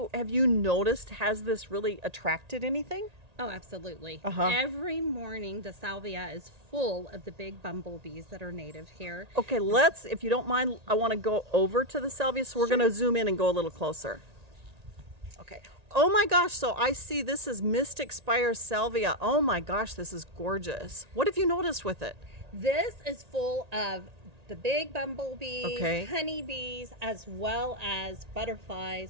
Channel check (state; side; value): late; left; 1.8 ms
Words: noticed, has this really attracted anything? Oh, absolutely. Uh-huh. Every morning the salvia is full of the big bumblebees that are native here. Okay, if you don't mind, I want to go over to the salvia, so we're Sure. going to zoom in and go a little closer. Okay. Oh my gosh, so I see this is Mystic Spire salvia. Oh my gosh, this is gorgeous. What have you noticed with it? This is full of the big bumblebees, Okay. honeybees, as well as butterflies